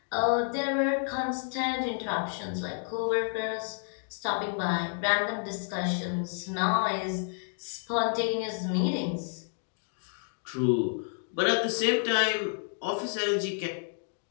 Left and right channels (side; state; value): right; silent; 58 dB below the other